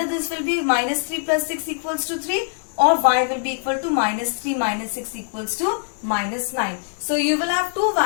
this will be minus 3 plus 6 equals to 3, or y will be equal to minus 3 minus 6 equals to minus 9. So you will have two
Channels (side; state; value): right; silent; digital silence